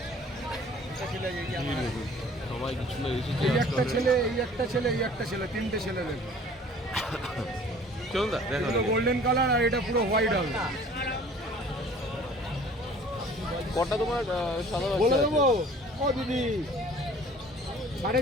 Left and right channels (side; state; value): both; normal; correlation 0.50